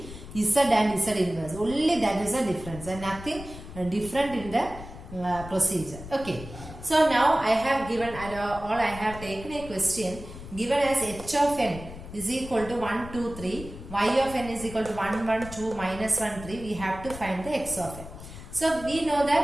Z and Z inverse. Only that is the difference and nothing different in the procedure. Okay. So now I have given I have taken a question given as h of n is equal to 1, 2, 3, y of n is equal to 1, 1, 2, minus 1, 3. We have to find the x of n. So we know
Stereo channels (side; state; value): left; noise; rumble, 13 dB below the sound